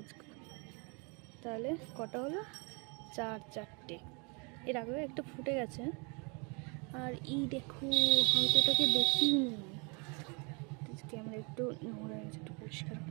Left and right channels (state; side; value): quieter; left; 32.4 dB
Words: তাহলে কটা হলো? চারটে। এর আগেও একটা ফুটে গেছে। আর এই দেখো, হয়তো এটাকে দেখিনি, ক্যামেরা একটু নোংরা হয়েছে, একটু পরিষ্কার।